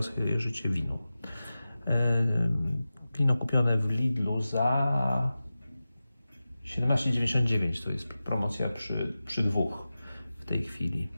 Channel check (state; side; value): inverted; both; correlation -0.95